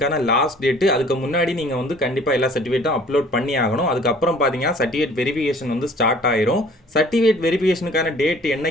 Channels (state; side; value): normal; both; correlation 0.53